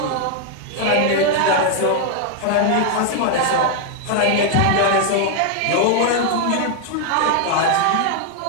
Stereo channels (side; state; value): both; different; correlation 0.00